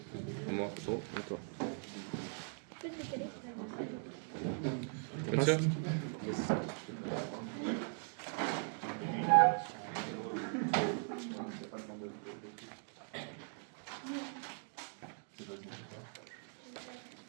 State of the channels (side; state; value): left; silent; 51 dB below the other